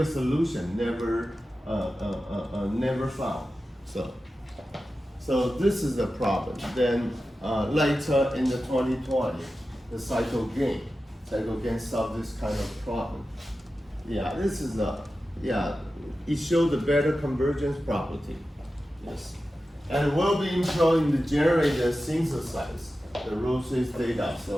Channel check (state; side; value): normal; both; correlation 0.93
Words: solution never found. So this is the problem. Then later in the 2020, the cycle gain solved this kind of problem. Yeah, this is it showed the better convergence property. Yes, and we'll be employing the generator synthesize the row trace data.